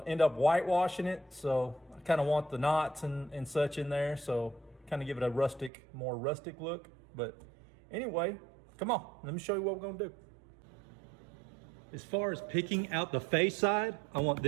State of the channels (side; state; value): left; drops out; at 5.7 s